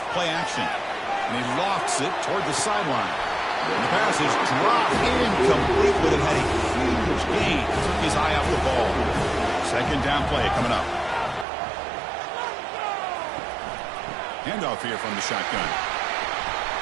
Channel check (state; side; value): drops out; left; at 11.5 s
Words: play action. And he lofts it toward the sideline. And the pass is dropped incomplete, but it had a huge gain. Took his eye off the ball. 2nd down play coming up. Handoff here from the shotgun.